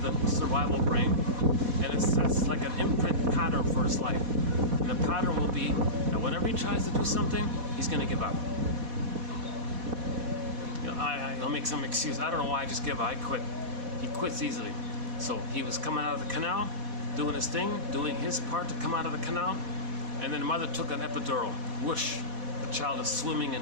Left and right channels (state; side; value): late; left; 4.1 ms